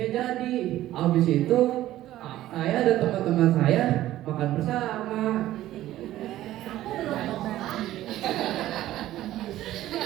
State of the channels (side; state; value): left; quieter; 14.3 dB